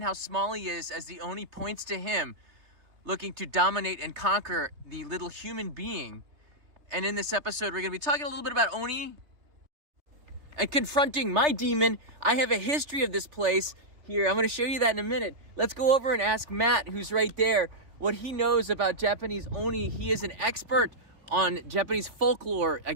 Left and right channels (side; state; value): left; late; 3.2 ms